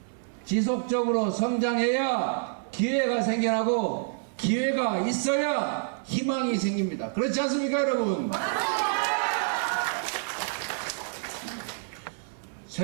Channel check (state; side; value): silent; left; 59 dB below the other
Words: 지속적으로 성장해야 기회가 생겨나고 기회가 있어야 희망이 생깁니다. 그렇지 않습니까, 여러분?